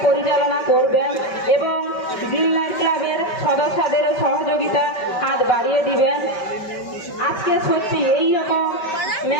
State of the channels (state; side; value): late; right; 5.2 ms